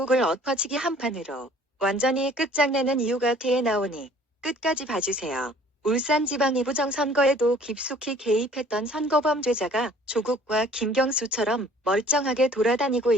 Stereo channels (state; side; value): normal; both; correlation 0.53